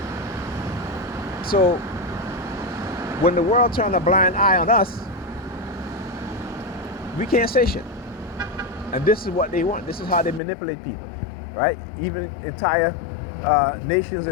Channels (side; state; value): right; drops out; at 10.4 s